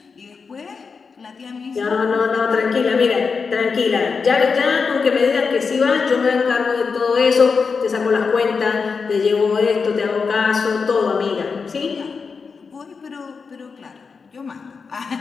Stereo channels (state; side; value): quieter; right; 5.2 dB